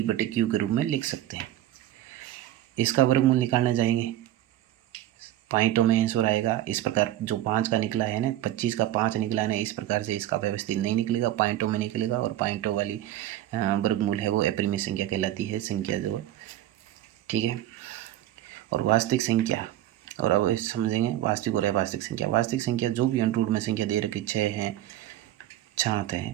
के रूप में लिख सकते हैं। इसका वर्गमूल निकालने जाएंगे पॉइंटों में आंसर आएगा। इस प्रकार जो 5 का निकला है ना, 25 का 5 निकला है ना, इस प्रकार से इसका व्यवस्थित नहीं निकलेगा, पॉइंटों में निकलेगा और पॉइंटों वाली वर्गमूल है वो अपरिमेय संख्या कहलाती है संख्या जो, ठीक है। और वास्तविक संख्या, और अब समझेंगे वास्तविक और अवास्तविक संख्या। वास्तविक संख्या जो भी अंडरूट में संख्या दे रखी 6 है 7 है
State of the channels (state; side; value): quieter; left; 13.6 dB